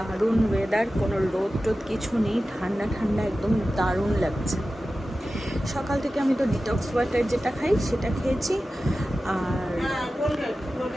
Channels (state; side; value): normal; both; correlation 0.94